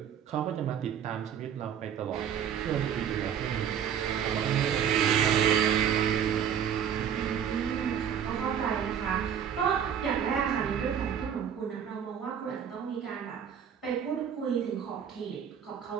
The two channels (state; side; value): quieter; left; 8.5 dB